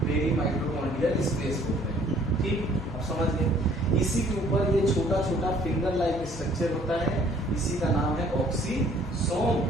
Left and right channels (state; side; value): normal; both; correlation 0.58